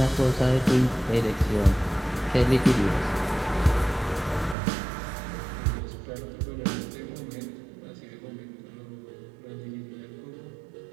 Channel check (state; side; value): drops out; left; at 4.5 s